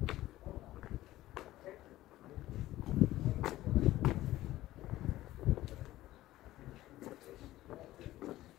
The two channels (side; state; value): right; quieter; 15.6 dB